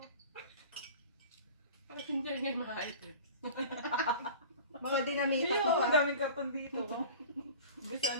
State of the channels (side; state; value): both; inverted; correlation -0.39